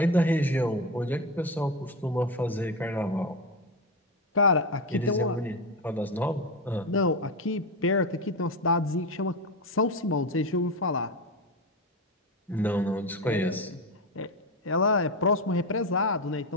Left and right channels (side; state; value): both; normal; correlation 0.17